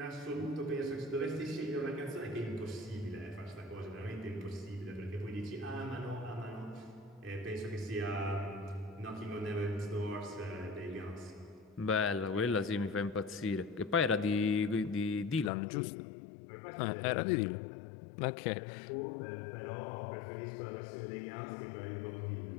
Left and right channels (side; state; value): right; drops out; at 15.5 s